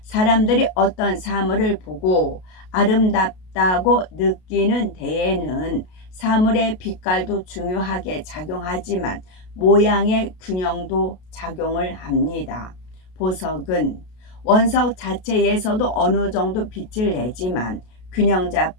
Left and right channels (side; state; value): right; late; 33 ms